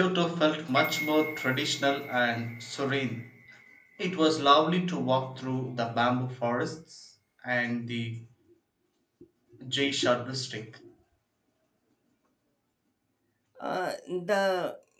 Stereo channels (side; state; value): both; identical; correlation 1.00